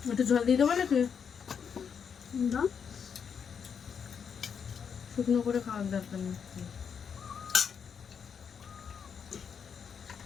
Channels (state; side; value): quieter; right; 7.0 dB